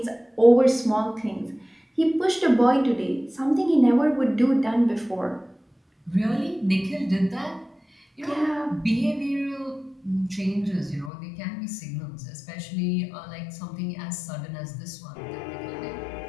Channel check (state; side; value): drops out; right; at 11.1 s